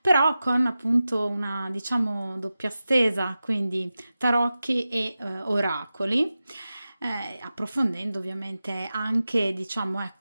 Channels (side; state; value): both; inverted; correlation -0.94